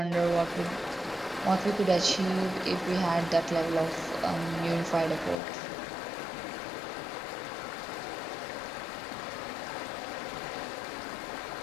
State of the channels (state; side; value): drops out; right; at 5.4 s